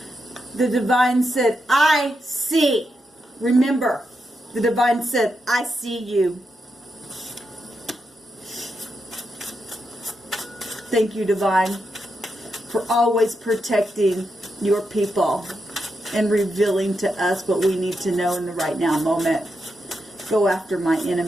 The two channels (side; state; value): both; normal; correlation 0.84